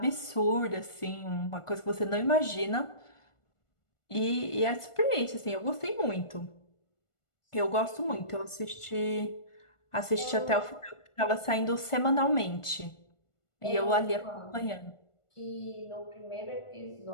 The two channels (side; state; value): right; late; 1.4 ms